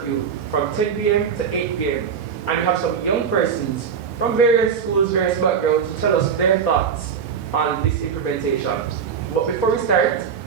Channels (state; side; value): quieter; left; 6.9 dB